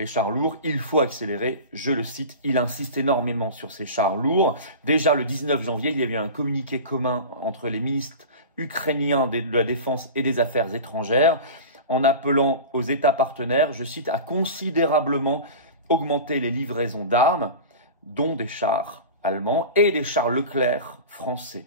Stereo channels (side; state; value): both; inverted; correlation -0.32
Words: chars lourds, il faut accélérer ». Je le cite, il insiste énormément sur ces chars lourds. Déjà le 19 janvier, il y a eu un communiqué commun entre les ministres ukrainiens de la Défense et des Affaires étrangères, en appelant aux États partenaires, je cite, à considérablement augmenter les livraisons d'armes, dont des chars allemands et des chars Leclerc français.